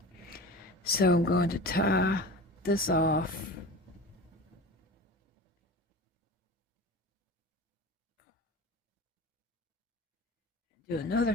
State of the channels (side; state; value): both; normal; correlation 0.34